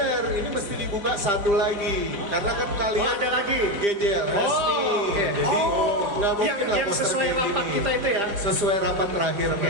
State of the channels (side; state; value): left; late; 5.0 ms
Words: ini mesti dibuka satu lagi. Karena kan kalian ada lagi. GJLS nih. Jadi nggak mungkin lah yang poster sesuai kayak rapat gini. kita itu ya. Sesuai rapat terakhir,